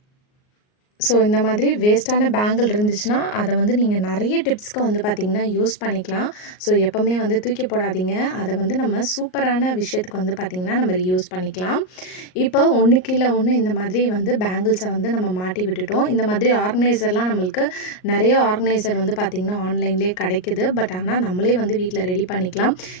ஸோ இந்த மாதிரி வேஸ்ட்டான பேங்கிள் இருந்துச்சுன்னா, அத வந்து நீங்க நெறைய டிப்ஸ்க்கு வந்து பார்த்தீங்கன்னா, யூஸ் பண்ணிக்கலாம். ஸோ எப்பவுமே வந்து தூக்கி போடாதீங்க. அத வந்து நம்ம சூப்பரான விஷயத்துக்கு வந்து பார்த்தீங்கன்னா, நம்ம ரீயூஸ் பண்ணிக்கலாம். இப்போ ஒண்ணுக்கு கீழ ஒண்ணு இந்த மாதிரி வந்து பேங்கிள்ஸ வந்து நம்ம மாட்டி விட்டுட்டோம். இந்த மாதிரி ஆர்கனைசர்லாம் நம்மளுக்கு நெறைய ஆர்கனைசர் வந்து பார்த்தீங்கன்னா, ஆன்லைன்லேயே கிடைக்குது. பட் ஆனா நம்மளே வந்து வீட்ல ரெடி பண்ணிக்கலாம்.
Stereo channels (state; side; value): late; right; 38 ms